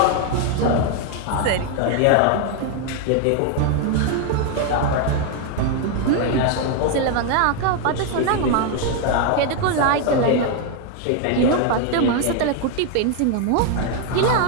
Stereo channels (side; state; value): both; different; correlation 0.01